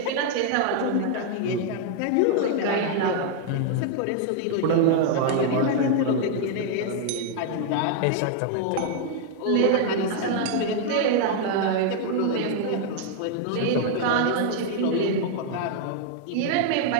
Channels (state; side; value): different; both; correlation 0.00